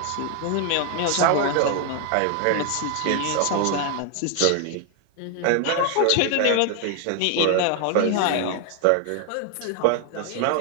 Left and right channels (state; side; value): different; both; correlation 0.00